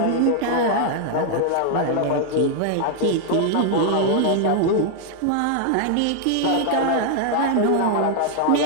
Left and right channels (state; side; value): different; both; correlation 0.00